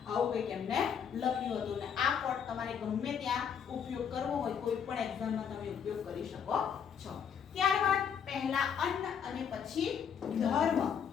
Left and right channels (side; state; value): right; quieter; 7.6 dB